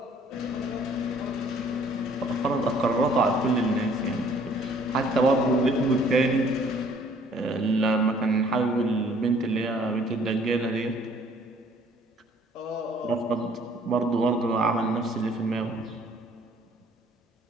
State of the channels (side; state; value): both; normal; correlation 0.58